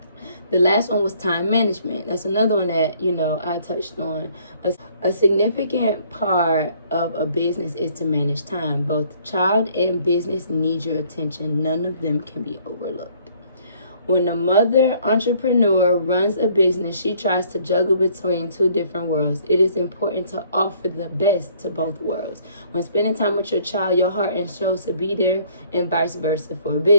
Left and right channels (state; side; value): inverted; both; correlation -0.60